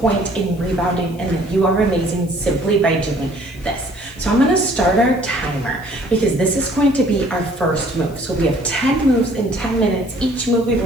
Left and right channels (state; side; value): noise; left; hiss, 24 dB below the sound